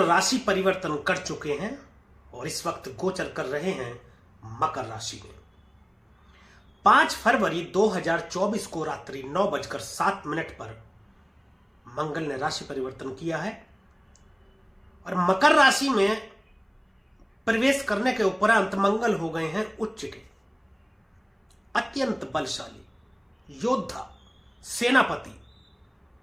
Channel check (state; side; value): identical; both; correlation 1.00